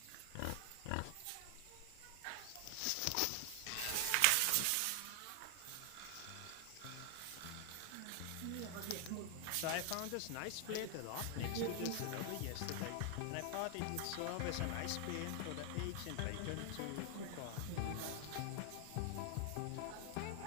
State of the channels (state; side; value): different; both; correlation 0.00